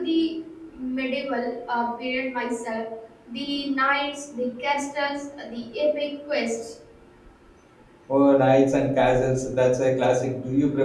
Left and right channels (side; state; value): both; identical; correlation 1.00